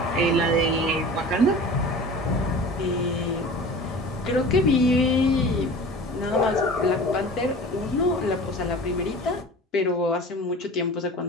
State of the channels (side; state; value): both; normal; correlation 0.38